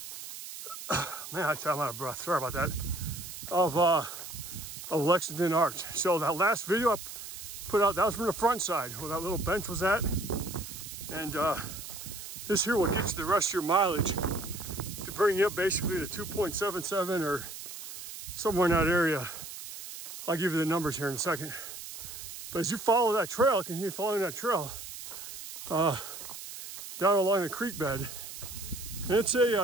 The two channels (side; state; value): right; noise; hiss, 11 dB below the sound